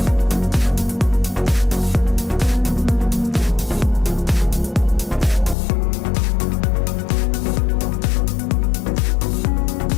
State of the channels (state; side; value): drops out; right; at 5.6 s